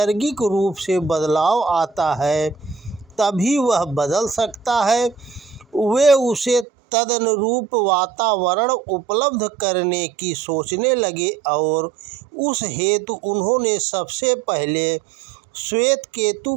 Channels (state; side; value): drops out; left; at 6.7 s